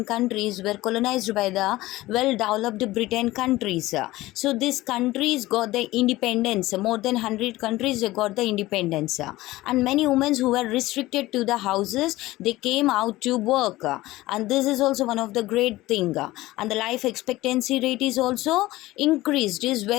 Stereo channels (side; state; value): right; quieter; 18.0 dB